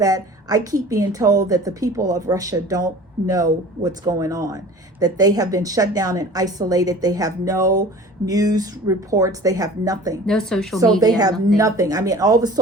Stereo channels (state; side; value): normal; both; correlation 0.43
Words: I keep being told that the people of Russia don't know what's going on, that they have been shut down and isolated. They have no news reports. They have nothing. No social media. So media. they have nothing. I mean, all the